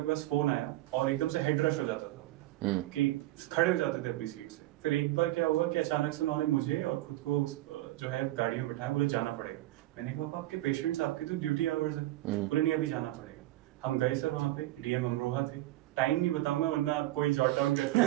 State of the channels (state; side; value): quieter; left; 16.7 dB